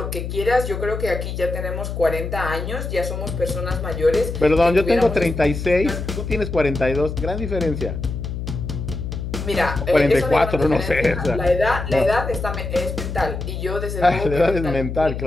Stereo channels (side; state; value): left; noise; hum, 5 dB below the sound